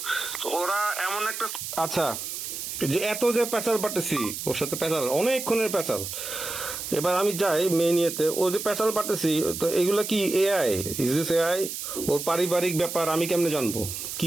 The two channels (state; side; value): noise; right; hiss, 6 dB below the sound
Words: তো ওরা এমন একটা। আচ্ছা, যে এত যে প্যাচাল পাটেছি ওর সাথে, প্যাচাল অনেকক্ষণের প্যাচাল। এবার আমি যাই মেয়ে নিয়েতে, ও যে প্যাচাল পাটেছি, তো এগুলা কি এআই? Is this AI? ওর পারিবারিক ব্যাপার আমি কেমনে জানবো?